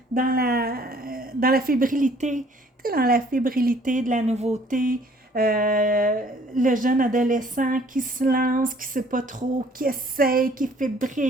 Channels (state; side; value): normal; both; correlation 0.58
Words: la fébrilité. Tu sais, dans la fébrilité de la nouveauté. Le jeune adolescent qui se lance, qui ne sait pas trop, qui essaye, qui est